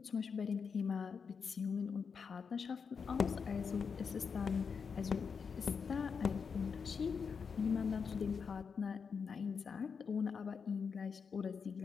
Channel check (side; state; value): right; quieter; 5.9 dB